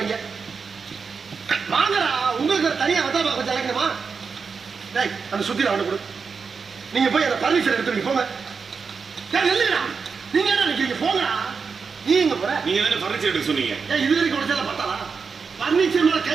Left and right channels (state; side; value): quieter; left; 5.4 dB